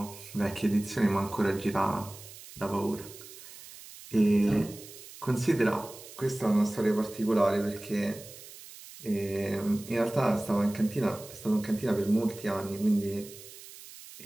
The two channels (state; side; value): noise; right; hiss, 17 dB below the sound